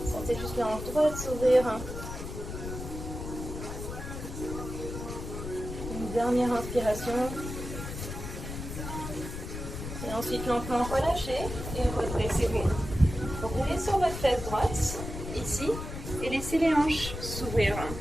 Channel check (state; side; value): noise; left; rumble, 7 dB below the sound